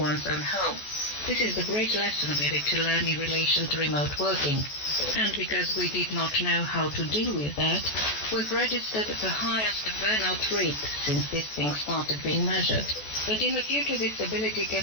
own home. This is the great lesson we need to learn in relation to remote working. And because we did not know how to deal with that, we've registered the highest burnout rate since this thing started being measured. But in the future, this ability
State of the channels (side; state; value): right; late; 14 ms